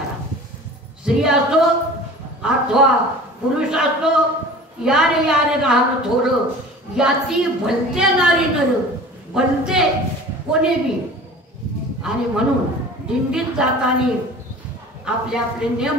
स्त्री असो अथवा पुरुष असो, यारे राहणं थोडं, याती भलते नारी नर, भलते कोणी बी. आणि म्हणून दिंडीत जाताना आपले आपले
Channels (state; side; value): normal; both; correlation 0.41